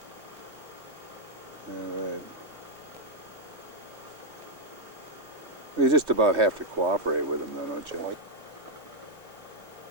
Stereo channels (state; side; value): late; left; 3.2 ms